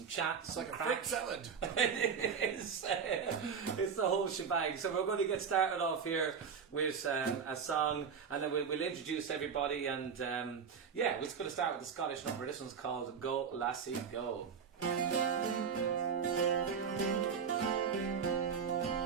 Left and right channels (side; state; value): left; quieter; 6.5 dB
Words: chats. It's like a fruit salad. It's the whole shebang. So we're going to get started off here with a song, and then we'll introduce everybody. And we're just going to start with the Scottish number. This one's called Go Lassie Go.